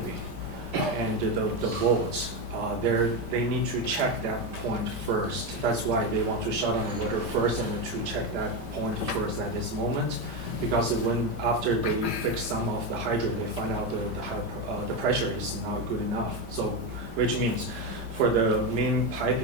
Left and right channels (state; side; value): late; left; 5.1 ms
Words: and the bolts. They need to check that point first. That's why they want to shut down the water first and to check that point first at this moment. Because after they fix some of the hydrant, they find out the pressure is not good enough. So, which means for the main